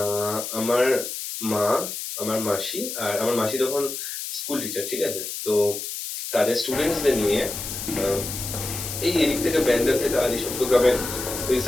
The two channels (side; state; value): left; noise; hiss, 6 dB below the sound